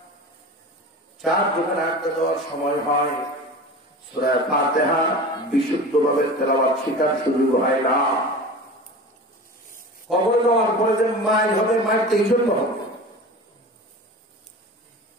চার দোকানে আড্ডা দেওয়ার সময় হয়, সূরা ফাতিহা বিশুদ্ধভাবে তেলাওয়াত শেখার সুযোগ হয় না। কবরে যাওয়ার পরে যে মাইল হবে, মাইলটা এই জন্য হবে।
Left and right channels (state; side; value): normal; both; correlation 0.34